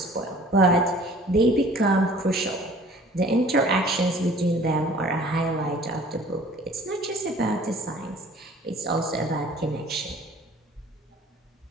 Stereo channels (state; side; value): normal; both; correlation 0.50